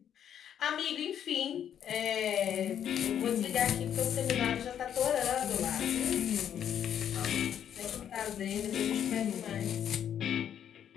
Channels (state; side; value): quieter; right; 9.4 dB